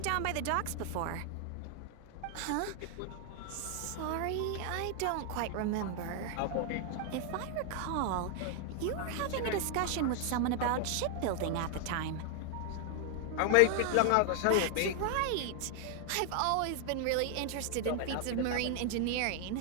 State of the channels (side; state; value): both; different; correlation 0.00